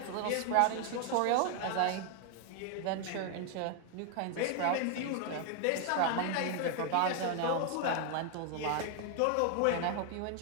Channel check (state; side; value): different; both; correlation 0.00